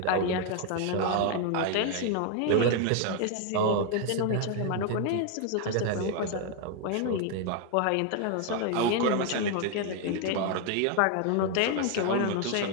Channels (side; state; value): both; different; correlation 0.00